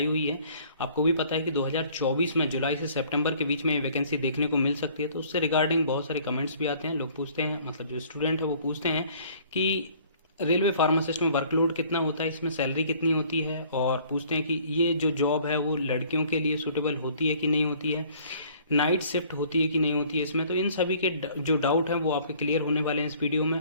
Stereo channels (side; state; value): both; inverted; correlation -0.56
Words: हुई है। आपको भी पता है कि 2024 में जुलाई से सितंबर के बीच में ये वैकेंसी देखने को मिल सकती है। तो उससे रिगार्डिंग बहुत सारे कमेंट्स भी आते हैं। लोग पूछते हैं, मतलब जो स्टूडेंट है वो पूछते हैं कि रेलवे फार्मासिस्ट में वर्कलोड कितना होता है, इसमें सैलरी कितनी होती है, और पूछते हैं कि ये जो जॉब है वो लड़कियों के लिए सूटेबल होती है कि नहीं होती है, नाइट शिफ्ट होती है कि नहीं होती है इसमें। तो इन सभी के जो डाउट हैं वो आपके क्लियर होने वाले हैं इस वीडियो